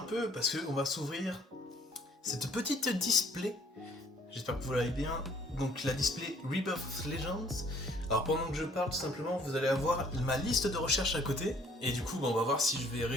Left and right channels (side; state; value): both; normal; correlation 0.59